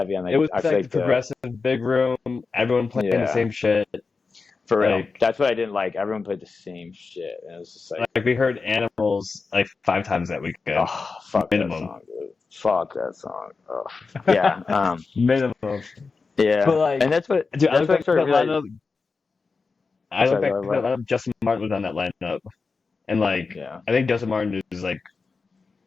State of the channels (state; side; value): quieter; right; 4.5 dB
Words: on It like was I feel like the like the progressive big room, everyone playing the yeah, same shit. for real. Like That's what I didn't like. Everyone played the same shit, and it was just like, like we heard animals like 5 times that weekend, oh fuck that minimum. song, dude. Fuck that song. Oh yeah, Minimum. But yeah, like, and that's what dude, I that's look what I back at started that realizing. lineup. I look Sorry, back go at that ahead. lineup. Justin Martin was on that lineup, and like, Yeah, I think Justin Martin is like